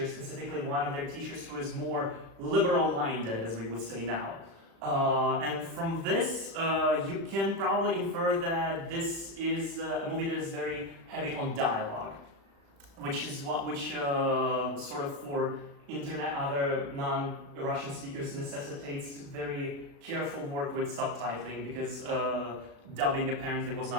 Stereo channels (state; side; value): late; left; 36 ms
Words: specifically one of their teachers who is more liberal-minded, as we would say now. And from this, you can probably infer that this is a movie that is very heavy on dialogue, which is sort of for internet, other non-Russian speakers necessitates very careful work with subtitling, because dubbing apparently was